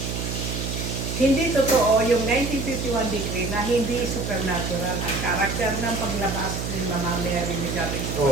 hindi totoo yung 1951 decree na hindi supernatural ang karakter ng paglabas ni Mama Mary Mediatrix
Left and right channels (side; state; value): right; noise; hum, 4 dB below the sound